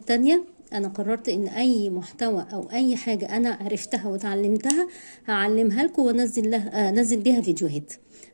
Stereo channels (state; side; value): inverted; both; correlation -1.00